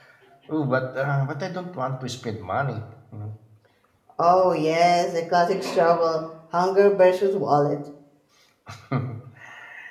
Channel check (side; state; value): both; identical; correlation 1.00